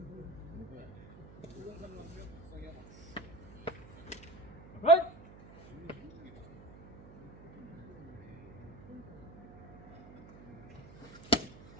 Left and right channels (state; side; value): noise; right; hum, 17 dB below the sound